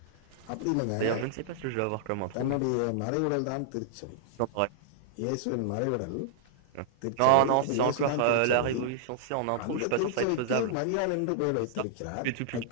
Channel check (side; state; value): both; different; correlation -0.01